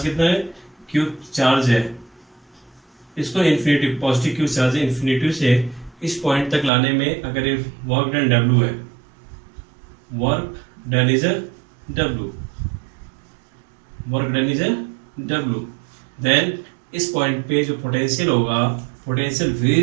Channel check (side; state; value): left; drops out; at 6.7 s